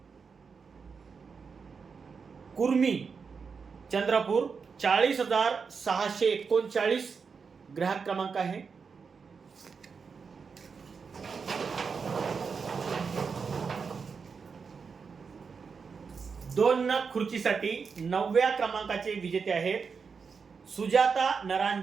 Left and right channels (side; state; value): left; quieter; 5.5 dB